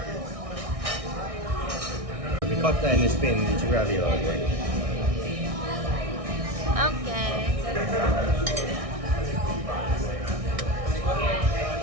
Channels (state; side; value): late; left; 1.6 ms